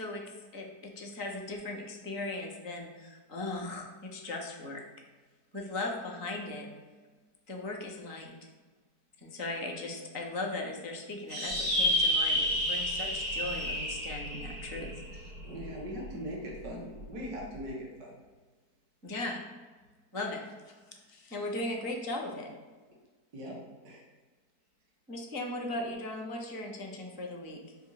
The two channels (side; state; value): left; late; 4.5 ms